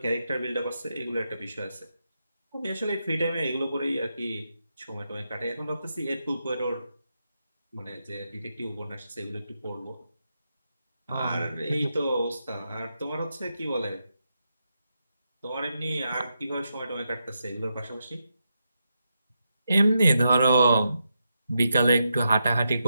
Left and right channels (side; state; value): both; inverted; correlation -0.85